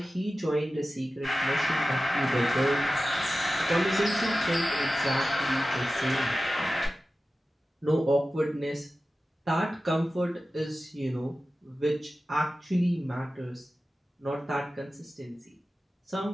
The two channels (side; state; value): both; normal; correlation 0.95